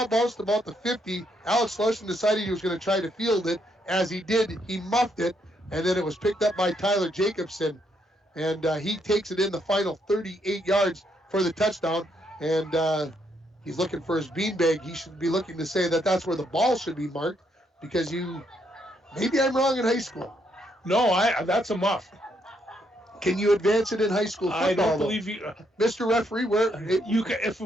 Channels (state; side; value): normal; both; correlation 0.74